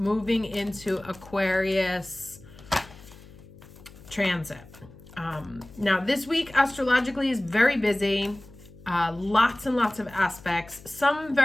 into Aquarius transit. Now this week astrologically is very busy. Lots and lots of aspects, some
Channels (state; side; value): noise; left; hum, 20 dB below the sound